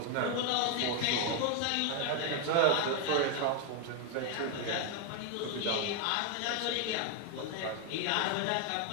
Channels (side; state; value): both; different; correlation 0.01